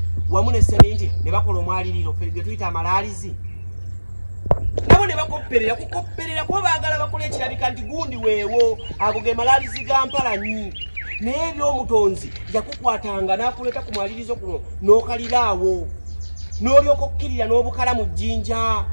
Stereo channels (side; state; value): both; inverted; correlation -1.00